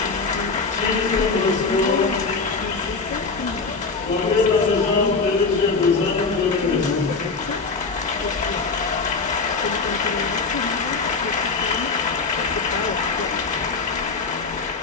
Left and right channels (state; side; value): quieter; right; 4.4 dB